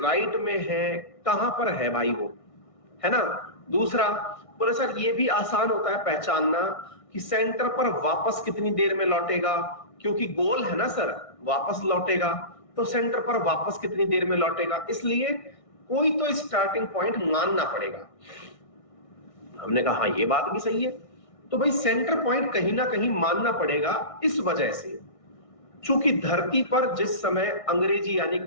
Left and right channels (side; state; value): right; late; 1.6 ms